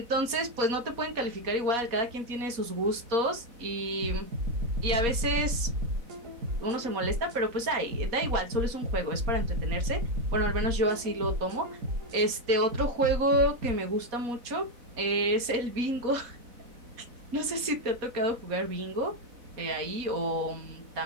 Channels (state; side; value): late; left; 4.2 ms